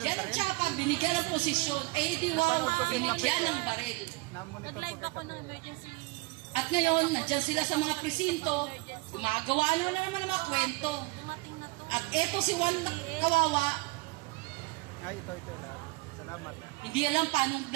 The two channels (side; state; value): left; quieter; 24.6 dB